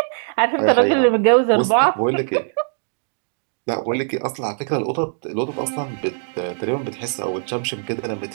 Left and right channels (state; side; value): silent; left; digital silence